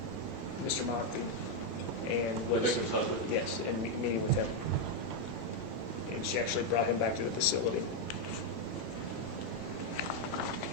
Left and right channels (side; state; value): both; normal; correlation 0.02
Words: Mr. Mockby and was Victim's husband? yes, and meeting with him. And she actually brought him back to the facility.